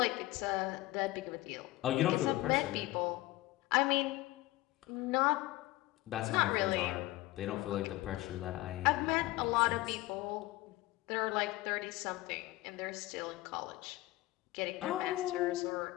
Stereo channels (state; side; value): quieter; right; 18.6 dB